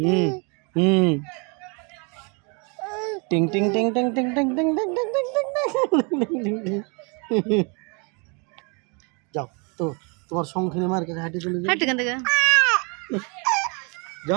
হুম টিং টিং টিং টিং টিং টিং টিং টিং টিং টিং টিং টিং। যাও তো তোমার সংখ্যানে মার কাছে হাঁটি চলে যাও। হাঁট এখান থেকে।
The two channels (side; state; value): left; quieter; 33.2 dB